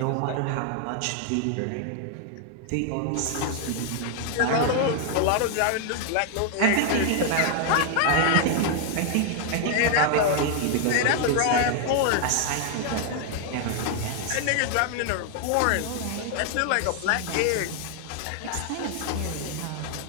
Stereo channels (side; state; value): both; different; correlation 0.00